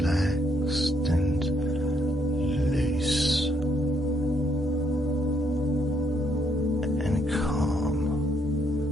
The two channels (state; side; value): normal; both; correlation 0.73